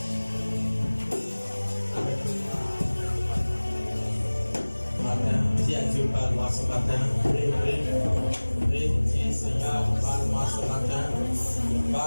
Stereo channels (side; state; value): both; inverted; correlation -1.00